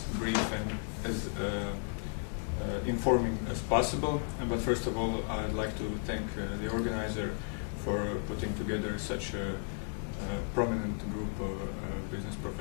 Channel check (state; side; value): silent; right; 55 dB below the other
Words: brief and as informing as possible. But first of all, I'd like to thank the organizer for putting together such a prominent group of business